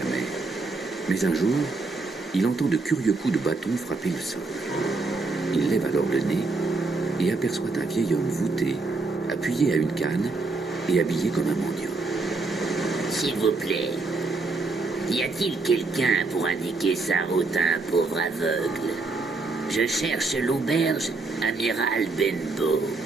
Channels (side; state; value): left; quieter; 3.7 dB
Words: mer. Mais un jour, il entend de curieux coups de bâton frapper le sol. Il lève alors le nez et aperçoit un vieil homme voûté, appuyé à une canne et habillé comme un mendiant. S'il vous plaît, y a-t-il quelqu'un pour indiquer sa route à un pauvre aveugle? Je cherche l'auberge Amiral Benbow.